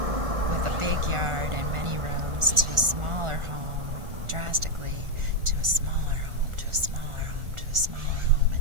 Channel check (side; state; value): left; late; 1.4 ms